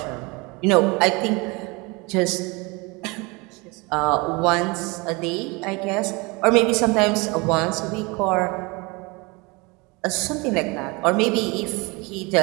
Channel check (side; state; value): left; quieter; 26.7 dB